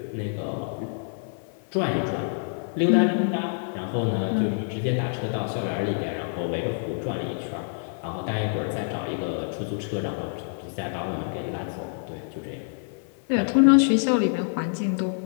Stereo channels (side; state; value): right; silent; digital silence